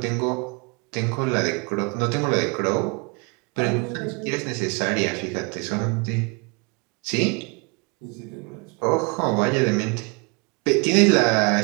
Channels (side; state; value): left; quieter; 31.7 dB